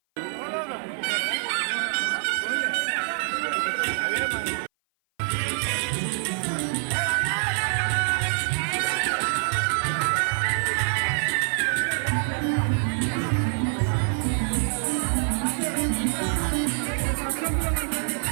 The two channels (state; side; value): silent; left; 56 dB below the other